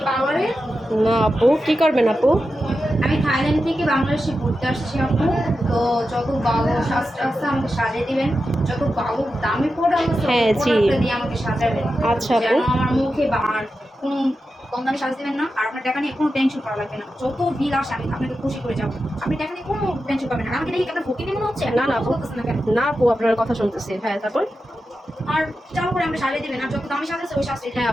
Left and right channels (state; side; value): normal; both; correlation 0.90